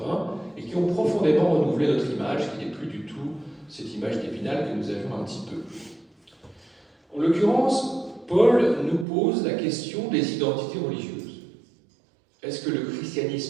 et qui ont profondément renouvelé notre image, qui n'est plus du tout cette image d'Épinal que nous avions un petit peu. En l'occurrence, Paul nous pose la question des identités religieuses. Est-ce que le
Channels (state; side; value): drops out; left; at 9.1 s